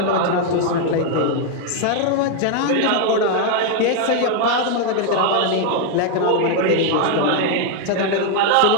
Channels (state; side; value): different; both; correlation 0.01